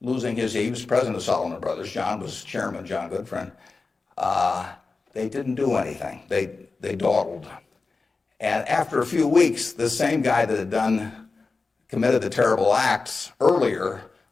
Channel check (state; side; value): quieter; right; 4.1 dB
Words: losing he was president of Salomon Brothers. John was chairman, John Goodfriend. They didn't do anything. They dawdled. And after a few weeks, the same guy that had committed the terrible acts earlier,